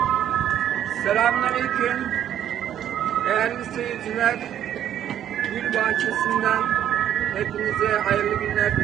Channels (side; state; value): left; quieter; 10.5 dB